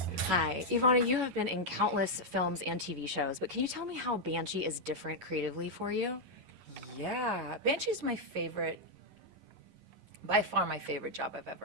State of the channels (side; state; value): left; late; 11 ms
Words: Hi, Ivana, you have been in countless films and TV shows, but can you tell me how Banshee is different creatively for you? Yeah, Banshee's my favorite, by far my favorite job I've